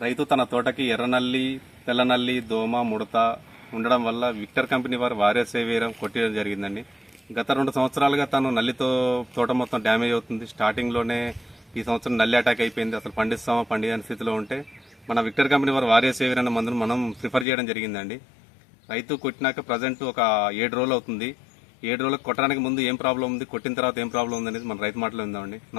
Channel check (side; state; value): right; drops out; at 17.4 s